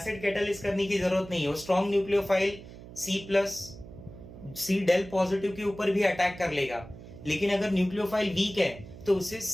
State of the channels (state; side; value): noise; right; hum, 16 dB below the sound